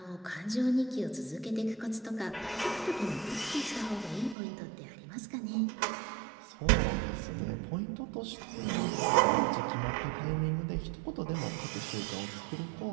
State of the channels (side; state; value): left; drops out; at 4.4 s